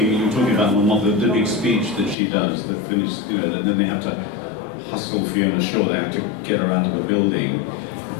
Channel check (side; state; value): right; drops out; at 2.1 s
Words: you were talking about, my mother, the big speech that she does, the finished, and then they have to hustle Fiona Shaw. They have to get her out of the building.